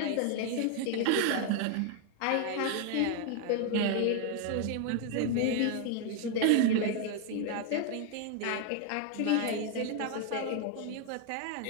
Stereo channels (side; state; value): both; different; correlation 0.00